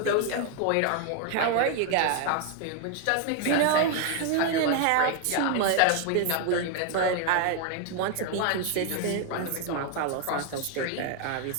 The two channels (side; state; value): both; different; correlation 0.01